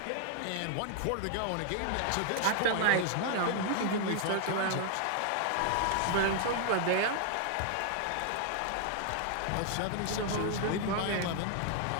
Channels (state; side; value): different; both; correlation 0.00